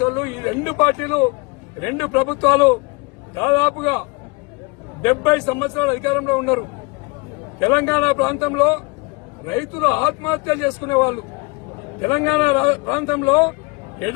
వాళ్ళు ఈ రెండు పార్టీలు రెండు ప్రభుత్వాలు దాదాపుగా 70 సంవత్సరాలు అధికారంలో ఉన్నారు. తెలంగాణ ప్రాంతంలో రైతులు ఆత్మహత్యలు చేసుకునేవాళ్లు, తెలంగాణ ప్రాంతంలో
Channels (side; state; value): right; quieter; 28.2 dB